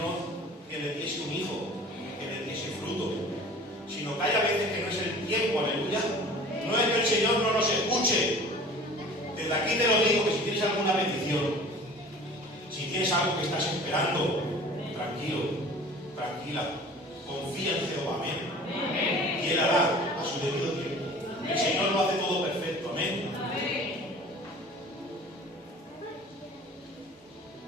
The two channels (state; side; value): normal; both; correlation 0.44